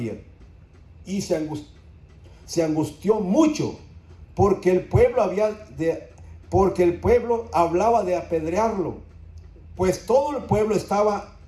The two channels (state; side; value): identical; both; correlation 1.00